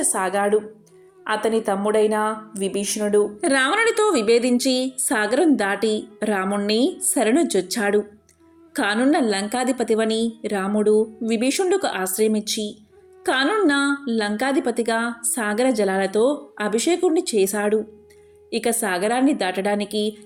అతని తమ్ముడైన విభీషణుడు రావణుడితో విభేదించి సాగరం దాటి రాముణ్ణి శరణుజొచ్చాడు. కానున్న లంకాధిపతివని రాముడు విభీషణుడికి ఆశ్రయమిచ్చి కానున్న లంకాధిపతిగా సాగర జలాలతో అభిషేకుణ్ణి చేశాడు. ఇక సాగరాన్ని దాటడానికి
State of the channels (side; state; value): both; identical; correlation 1.00